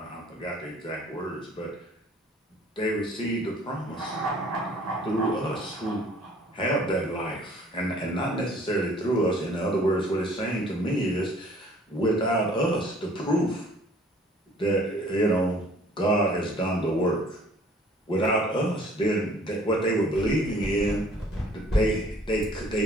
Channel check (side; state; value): both; normal; correlation 0.54